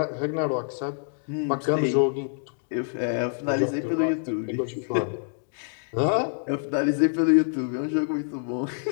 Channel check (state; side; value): silent; right; digital silence